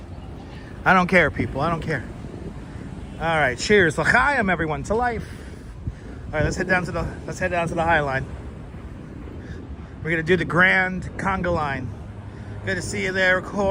I don't care, people. I don't care. All right, cheers. L'chaim, everyone, to life. All right, let's head down to the High Line. We're gonna do the Grand Conga Line. Good to see you there,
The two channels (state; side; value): identical; both; correlation 1.00